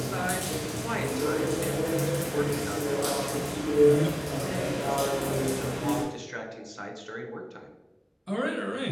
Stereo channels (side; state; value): both; identical; correlation 1.00